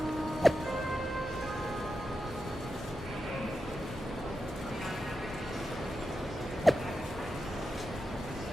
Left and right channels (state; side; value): normal; both; correlation 0.89